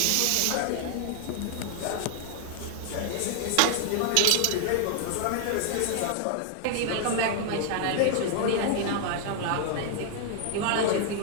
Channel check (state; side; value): different; both; correlation 0.00